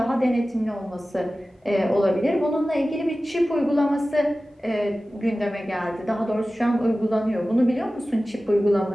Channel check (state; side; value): normal; both; correlation 0.96